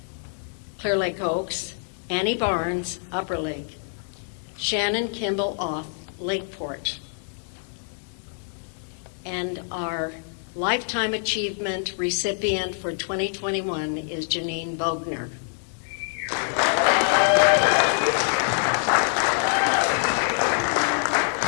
Clear Lake Oaks, Annie Barnes, Upper Lake, Shannon Kimball Off, Lakeport. And our Lifetime Achievement recipient for 2021 is Janine Bogner.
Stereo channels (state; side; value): silent; right; 61 dB below the other